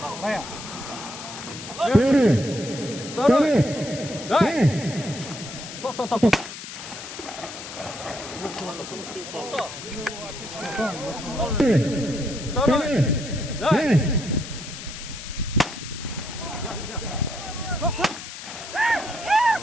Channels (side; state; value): left; noise; hiss, 11 dB below the sound